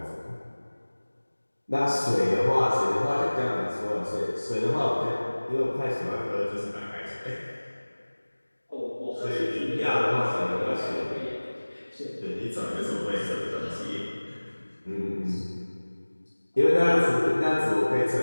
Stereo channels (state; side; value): inverted; both; correlation -1.00